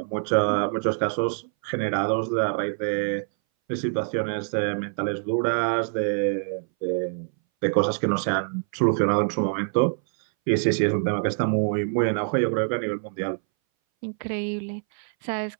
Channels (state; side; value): silent; left; 60 dB below the other